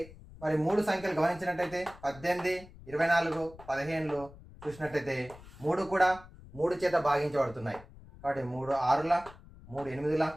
మరి మూడు సంఖ్యలు గమనించినట్టయితే 18, 24, 15 చూసినట్టయితే మూడు కూడా 3 చేత భాగించబడుతున్నాయి. కాబట్టి 3 6ల, 3 8ల,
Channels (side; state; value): left; noise; rumble, 19 dB below the sound